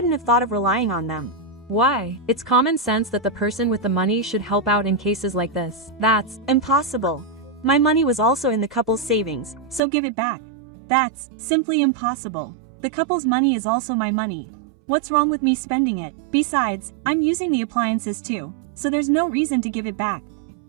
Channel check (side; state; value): left; drops out; at 9.8 s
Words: have thought of relying on them. Why? It's common sense that the person with the money should help out in cases like this. That's impossible. My money was also in the couple's savings, so give it back. That's simply impossible. The couple's money is also my money. What's wrong with me spending it? Besides, I'm using the appliances too, so there's no reason to give it back.